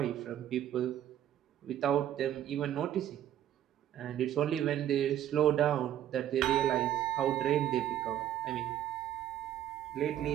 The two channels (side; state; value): left; quieter; 11.4 dB